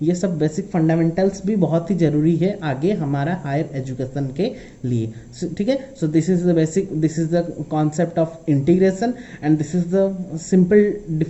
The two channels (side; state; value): both; identical; correlation 1.00